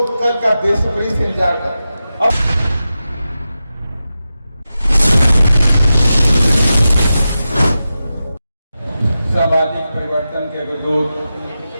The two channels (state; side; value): inverted; both; correlation -0.92